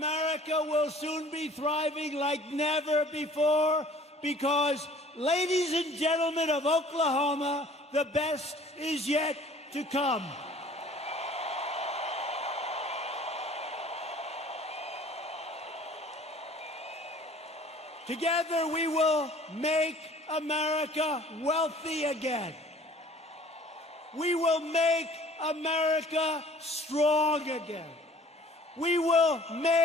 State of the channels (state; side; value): normal; both; correlation 0.51